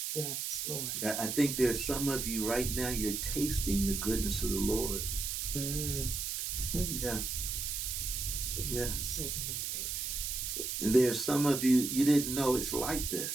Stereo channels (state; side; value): noise; right; hiss, 2 dB below the sound